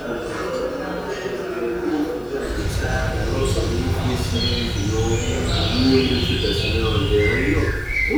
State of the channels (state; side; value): noise; left; hiss, 29 dB below the sound